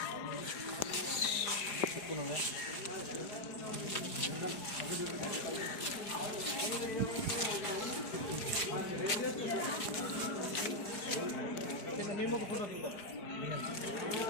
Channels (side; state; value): right; late; 4.9 ms